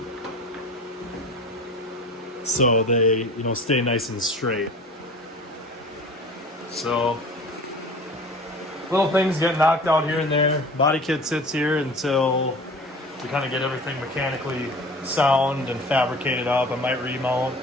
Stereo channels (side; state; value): both; normal; correlation 0.41